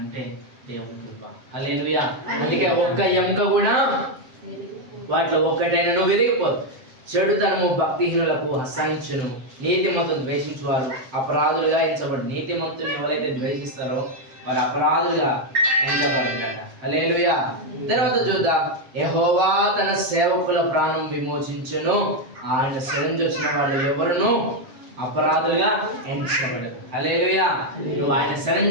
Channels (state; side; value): late; left; 7.6 ms